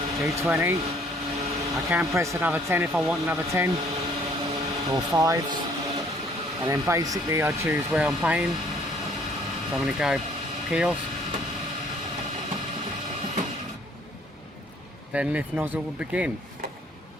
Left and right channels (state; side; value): normal; both; correlation 0.60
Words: G20. I can press another 10 if I want another 10, or 5s. And then basically I choose where I'm paying. So I'm going to go kiosk. Then lift nozzle will begin.